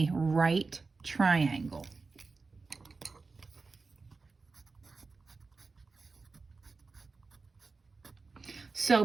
right triangle. So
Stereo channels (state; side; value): quieter; left; 4.2 dB